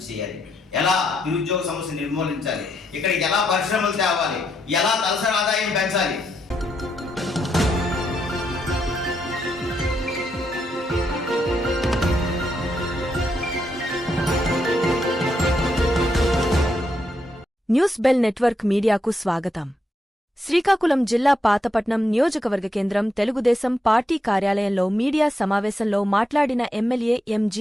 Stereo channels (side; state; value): both; normal; correlation 0.80